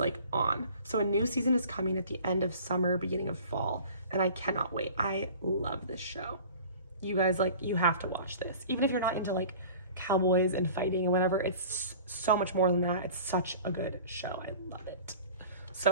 on. So a new season is coming at the end of summer, beginning of fall. And I cannot wait. I love this show. You guys, like, you have to watch this. Even if you're not into like cowboys and fighting and whatever, it's so much more than that. It's such a good show. I love it.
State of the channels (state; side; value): inverted; both; correlation -0.44